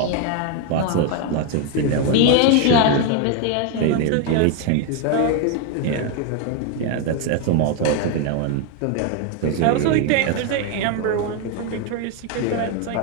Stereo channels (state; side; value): different; both; correlation 0.01